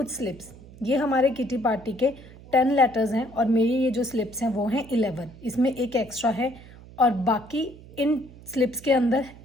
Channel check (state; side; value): noise; right; hum, 20 dB below the sound